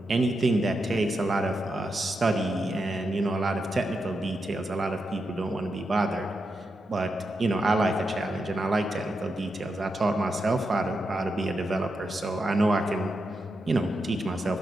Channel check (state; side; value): normal; both; correlation 0.86